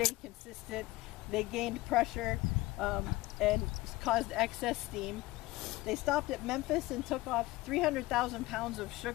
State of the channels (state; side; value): quieter; right; 19.7 dB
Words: consistent. They gained pressure and caused excess steam. They stopped at Memphis and took off 300,000 pounds of